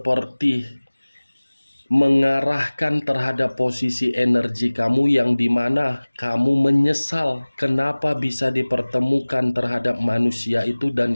mengarahkan terhadap posisi energi kamu yang dimana kamu menyesal kenapa bisa dipertemukan terhadap manusia itu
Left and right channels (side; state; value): both; inverted; correlation -1.00